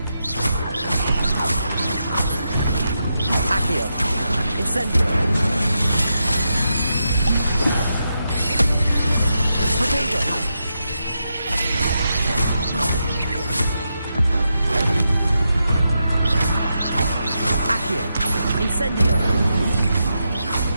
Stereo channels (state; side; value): inverted; both; correlation -0.86